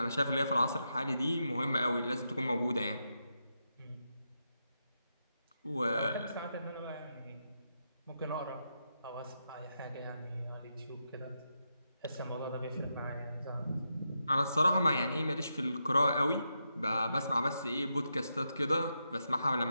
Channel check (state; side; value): inverted; both; correlation -0.85